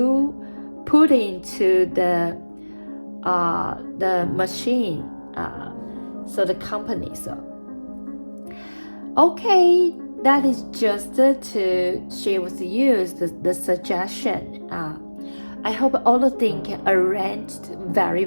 put into the machine, so the company. So okay, that is just to share with you the suggestion. I hope all the things arranged very,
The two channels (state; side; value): inverted; both; correlation -1.00